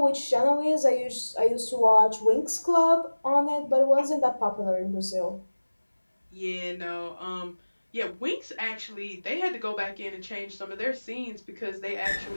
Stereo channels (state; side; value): inverted; both; correlation -1.00